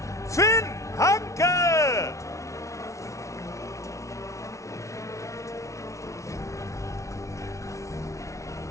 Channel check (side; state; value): right; late; 0.14 ms